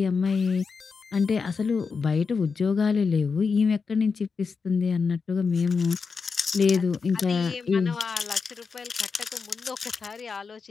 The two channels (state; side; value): quieter; right; 5.1 dB